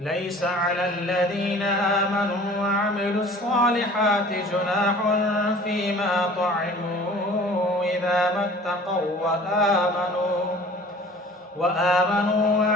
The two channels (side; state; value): both; normal; correlation 0.46